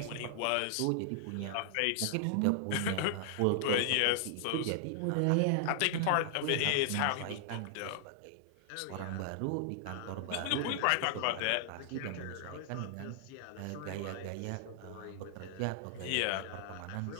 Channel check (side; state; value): both; different; correlation -0.01